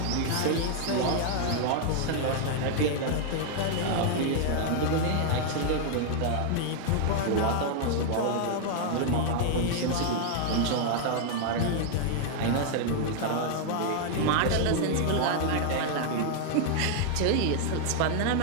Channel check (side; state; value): both; different; correlation 0.00